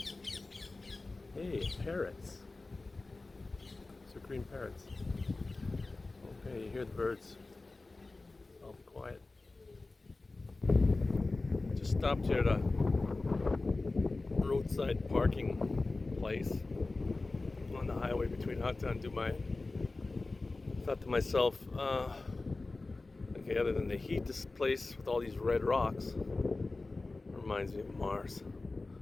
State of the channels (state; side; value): quieter; right; 3.4 dB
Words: Hey, parrots. These are green parrots. Okay, you hear the birds. I'll be quiet. Just stopped here at a roadside parking place on the highway between Hatta and Dubai. Thought to myself, okay, other than the heat, this place with all these red rocks reminds me of Mars.